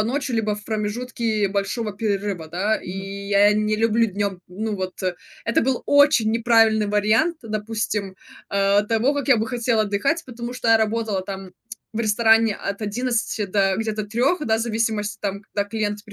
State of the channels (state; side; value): identical; both; correlation 1.00